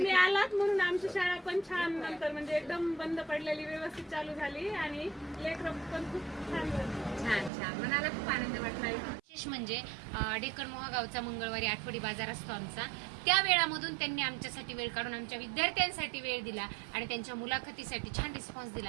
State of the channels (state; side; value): drops out; left; at 7.5 s